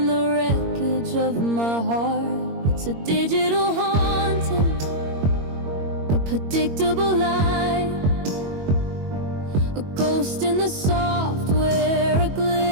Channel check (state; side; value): late; left; 21 ms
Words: the wreckage of my heart. It's a digital haunting, a predictable lie, a ghost in the software, a